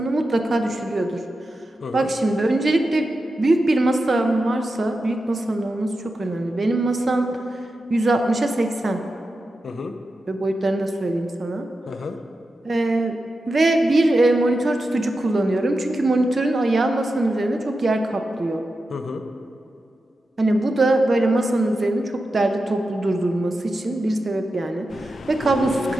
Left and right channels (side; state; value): both; normal; correlation 0.90